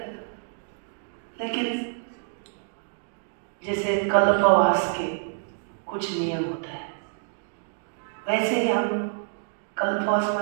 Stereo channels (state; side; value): silent; left; digital silence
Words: लेकिन जैसे कल्पवास के कुछ नियम होता है, वैसे ही हम कल्पवास